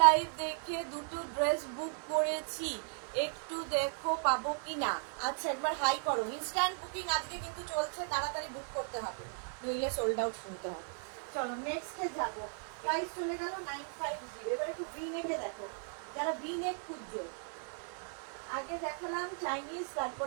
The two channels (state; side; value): silent; left; 54 dB below the other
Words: লাইভ দেখে দুটো ড্রেস বুক করেছি, একটু দেখো পাবো কিনা। আচ্ছা, একবার হাই করো। ইনস্ট্যান্ট বুকিং আজকে কিন্তু চলছে, তাড়াতাড়ি বুক করতে হবে, নইলে সোল্ড আউট শুনতে হবে। চলো নেক্সটে যাবো। প্রাইস চলে গেল 950। এবার একটু ভি নেকে দেখো, যারা ভি নেক খুঁজছো। আগে দেখালাম চাইনিজ,